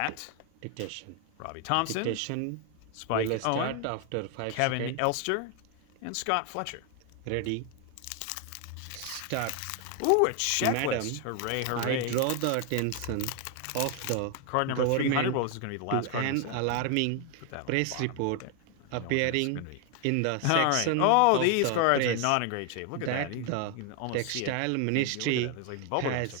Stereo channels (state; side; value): different; both; correlation 0.01